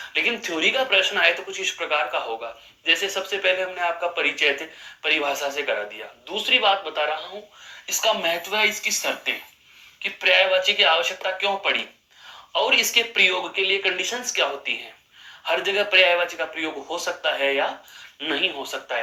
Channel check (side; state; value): both; identical; correlation 1.00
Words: लेकिन थ्योरी का प्रश्न आए तो कुछ इस प्रकार का होगा। जैसे सबसे पहले हमने आपका परिचय थे परिभाषा से करा दिया। दूसरी बात बता रहा हूं, इसका महत्व है इसकी शर्तें, कि पर्यायवाची की आवश्यकता क्यों पड़ी और इसके प्रयोग के लिए कंडीशंस क्या होती हैं। हर जगह पर्यायवाची का प्रयोग हो सकता है या नहीं हो सकता